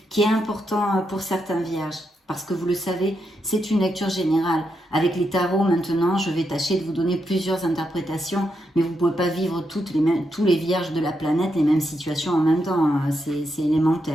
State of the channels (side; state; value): both; normal; correlation 0.83